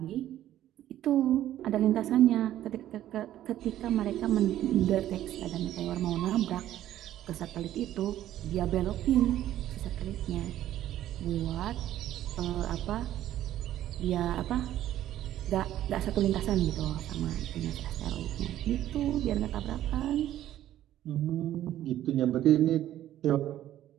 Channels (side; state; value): left; quieter; 12.7 dB